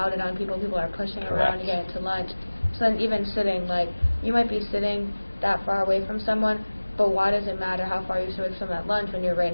on people. People are pushing around to get into lunch. So then even sitting, like, you might be sitting that far away from someone, but why does it matter how far you sit away from someone at lunch when you're right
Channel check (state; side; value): inverted; both; correlation -1.00